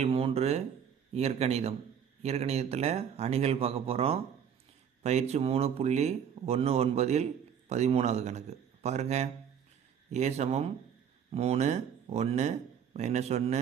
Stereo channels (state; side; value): quieter; left; 8.1 dB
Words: 3 இயற்கணிதம். இயற்கணிதத்தில் அணிகள் பார்க்க போகிறோம். பயிற்சி 3.19 13வது கணக்கு பாருங்கள். ஏ சமம் 3 1 -1